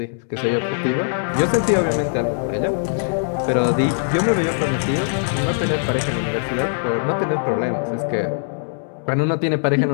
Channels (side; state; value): right; silent; 65 dB below the other